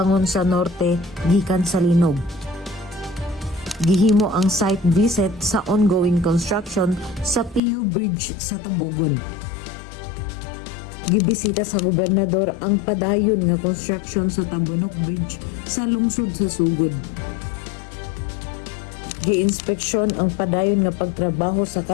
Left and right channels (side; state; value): right; drops out; at 7.6 s